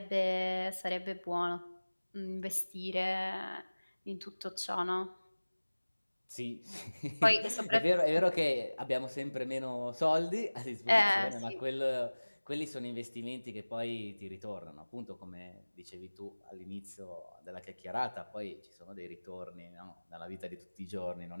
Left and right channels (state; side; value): inverted; both; correlation -1.00